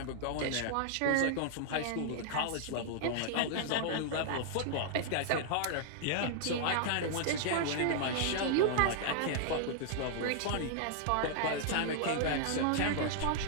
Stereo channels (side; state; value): both; different; correlation -0.01